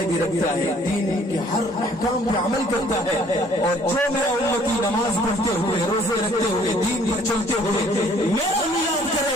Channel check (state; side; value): normal; both; correlation 0.59